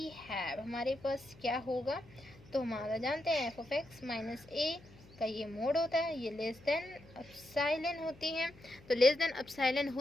हैव हमारे पास क्या होगा, तो हमारा जानते हैं F of x minus a का ये मोड होता है, ये लेस देन एप्सिलॉन होती है, तो लेस देन एप्सिलॉन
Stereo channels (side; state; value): left; noise; hum, 23 dB below the sound